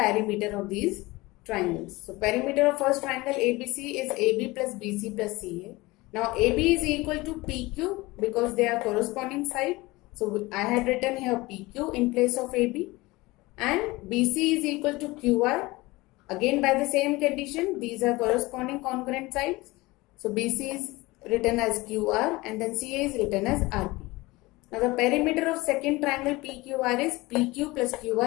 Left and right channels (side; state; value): right; quieter; 21.4 dB